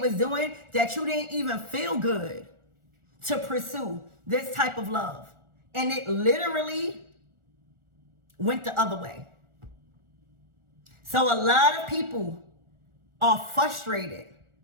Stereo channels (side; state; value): left; late; 1.4 ms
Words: doing that you didn't even feel good to pursue this type of love. And it literally went the other way. So a lot of people are frustrated